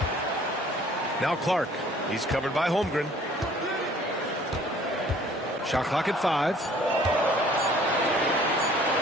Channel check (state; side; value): normal; both; correlation 0.55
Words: Now Clark. He's covered by Holmgren. Shot clock at 5.